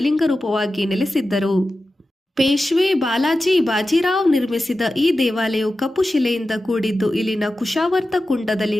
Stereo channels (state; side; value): normal; both; correlation 0.93